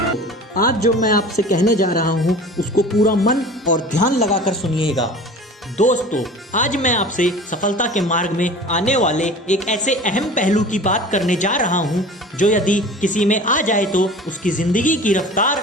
आज जो मैं आपसे कहने जा रहा हूँ उसको पूरा मन और ध्यान लगाकर सुनिएगा। दोस्तों, आज मैं आपसे सफलता के मार्ग में आने वाले एक ऐसे अहम पहलू की बात करने जा रहा हूँ जो यदि किसी में आ जाए तो उसकी ज़िंदगी की रफ्तार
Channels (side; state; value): both; normal; correlation 0.40